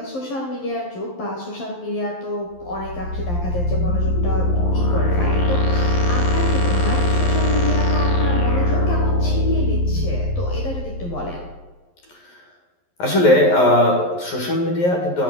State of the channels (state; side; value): late; right; 11 ms